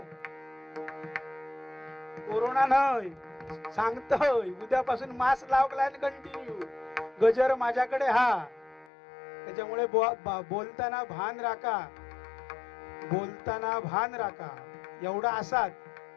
कोरोना नाही सांगतोय, उद्यापासून मास्क लावलाय कंटिन्यू. गजर माझ्याकडे हा. त्याच्यामुळे बोलताना भान राखा, बोलताना भान राखा. एवढा असात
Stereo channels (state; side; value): drops out; right; at 8.8 s